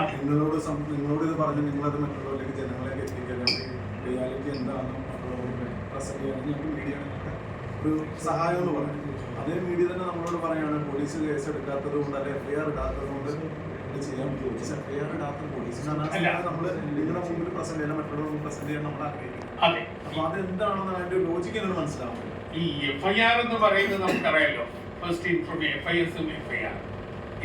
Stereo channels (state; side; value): identical; both; correlation 1.00